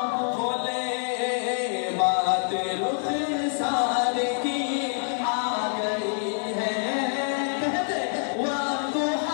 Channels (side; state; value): right; silent; digital silence